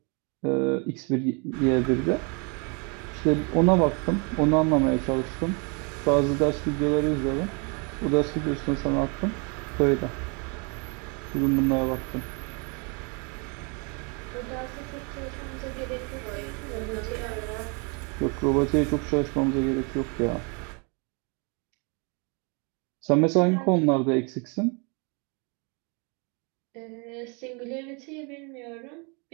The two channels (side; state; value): left; quieter; 33.7 dB